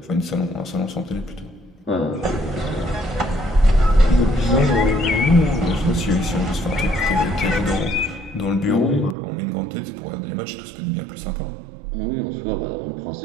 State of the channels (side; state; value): left; drops out; at 9.2 s